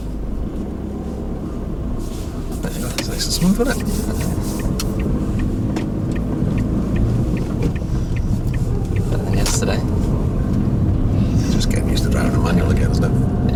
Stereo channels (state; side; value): identical; both; correlation 1.00